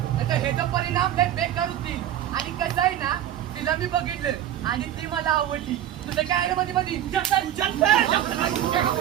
आता ह्याचा परिणाम लय बेकार होतील. आणि कसं आहे ना, तिला मी बघितलं आणि ती मला आवडली. तुझं काय रे मध्ये मध्ये?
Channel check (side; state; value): left; quieter; 11.5 dB